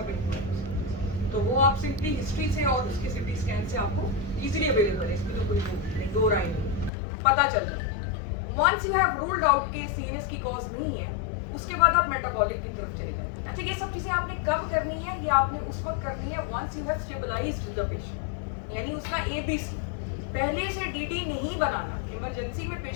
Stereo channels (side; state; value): right; drops out; at 6.9 s